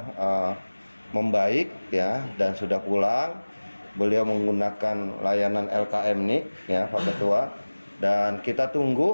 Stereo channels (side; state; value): both; inverted; correlation -1.00